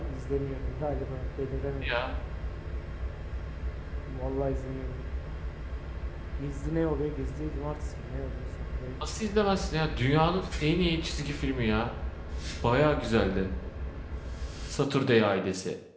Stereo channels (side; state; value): both; identical; correlation 1.00